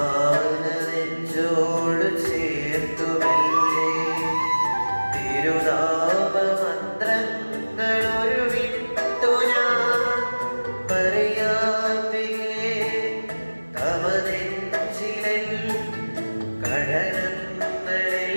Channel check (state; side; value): inverted; both; correlation -1.00